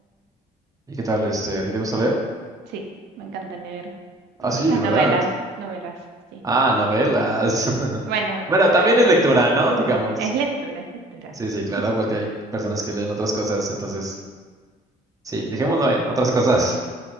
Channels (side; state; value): both; normal; correlation 0.52